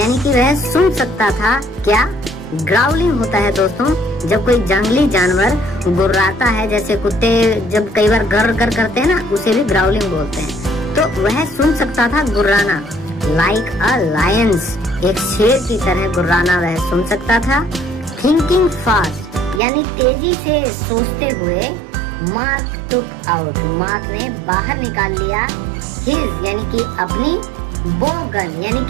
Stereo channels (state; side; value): drops out; left; at 19.6 s